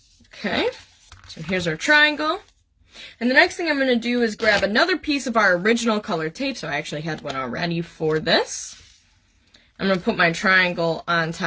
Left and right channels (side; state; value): both; identical; correlation 1.00